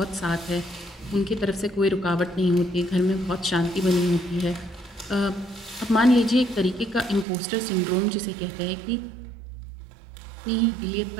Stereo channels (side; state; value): left; drops out; at 7.2 s